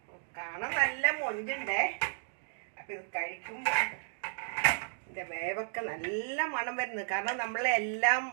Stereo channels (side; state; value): left; silent; digital silence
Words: കാണാൻ നല്ല മൊഞ്ചുണ്ടേ. അപ്പം ഇത് കഴിക്കുമ്പോൾ ഇതിൻ്റെ വേവൊക്കെ നല്ല മണം വരുന്നത്. കാരണം നമ്മളെല്ലാം